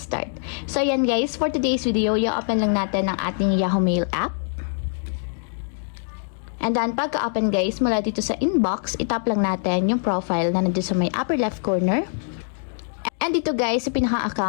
start. So ayan guys, for today's video, i-open lang natin ang ating Yahoo Mail app. And then, pagka-open guys, mula dito sa inbox, itap lang natin yung profile na nandito sa may upper left corner. And dito guys, sa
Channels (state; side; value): silent; right; digital silence